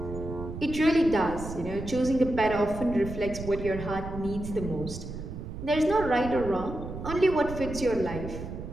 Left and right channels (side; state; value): right; noise; rumble, 9 dB below the sound